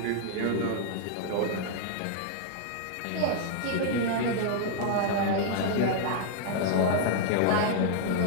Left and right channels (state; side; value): different; both; correlation -0.01